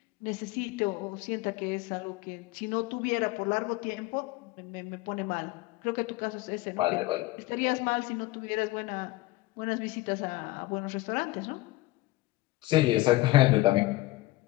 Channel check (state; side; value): quieter; right; 19.1 dB